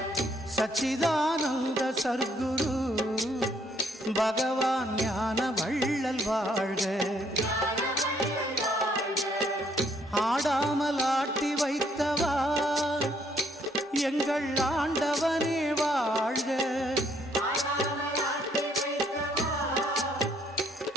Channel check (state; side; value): normal; both; correlation 0.68